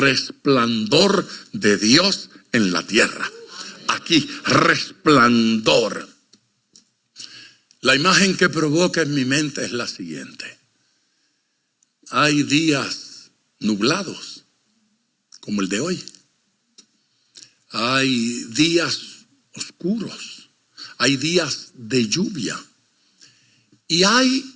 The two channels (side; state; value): both; identical; correlation 1.00